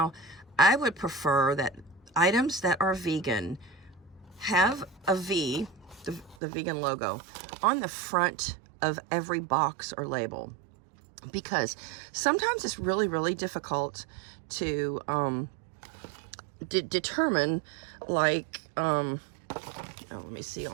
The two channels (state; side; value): drops out; left; at 6.4 s